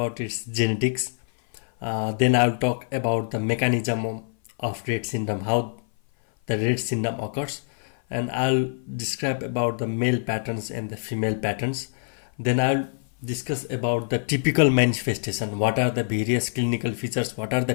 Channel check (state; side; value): silent; right; 56 dB below the other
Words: its genetics, then I will talk about the mechanism of Rett syndrome, how the Rett syndrome occurs, and I'll describe about the male patterns and the female patterns. Then I'll discuss about the typical manifestation, what are the various clinical features, what are the